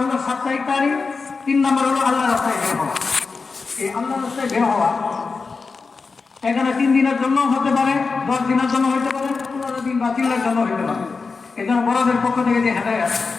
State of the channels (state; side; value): quieter; right; 4.5 dB